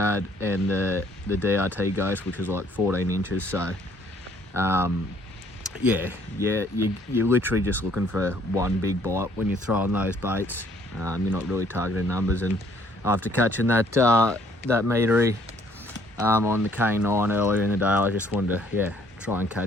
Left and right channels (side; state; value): both; normal; correlation 0.63